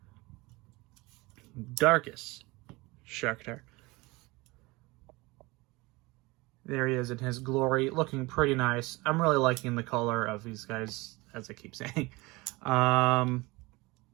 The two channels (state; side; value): quieter; left; 23.1 dB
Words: Darkest Sharktar. There he is in his glory, looking pretty nice. I'm really liking the color of these guys, as I keep saying.